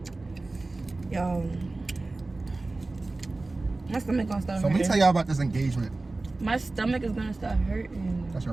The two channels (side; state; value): left; quieter; 3.2 dB